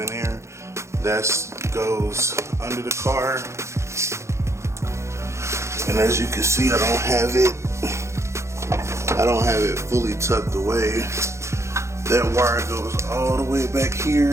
here. That goes under the car, and as you can see, I don't have it fully tucked away. That wire goes all the way back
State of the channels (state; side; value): late; left; 0.14 ms